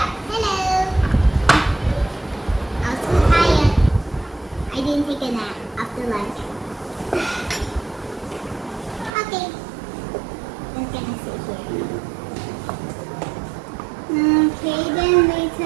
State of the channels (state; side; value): drops out; left; at 9.1 s